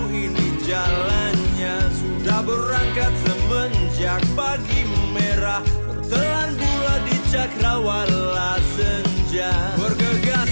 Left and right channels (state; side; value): inverted; both; correlation -1.00